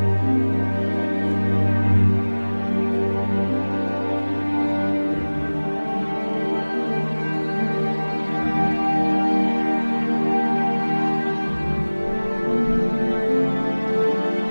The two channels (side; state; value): both; inverted; correlation -1.00